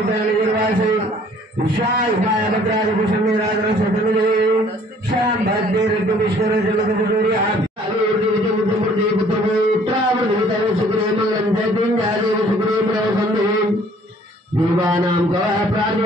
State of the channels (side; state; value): both; normal; correlation 0.57